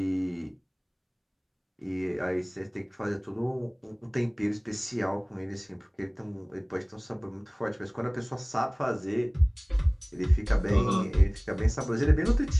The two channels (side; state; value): both; identical; correlation 1.00